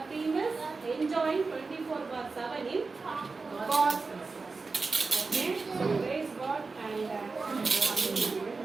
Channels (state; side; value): quieter; left; 4.2 dB